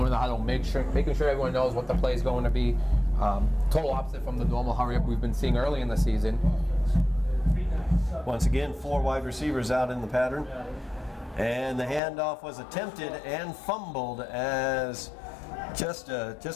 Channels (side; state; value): right; drops out; at 12.0 s